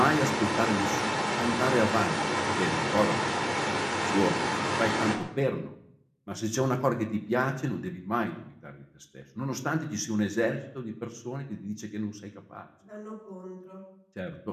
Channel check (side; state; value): both; identical; correlation 1.00